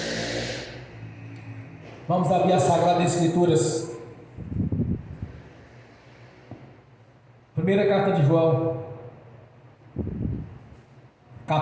Vamos abrir as Sagradas Escrituras. Primeira carta de João,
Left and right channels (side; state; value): both; identical; correlation 1.00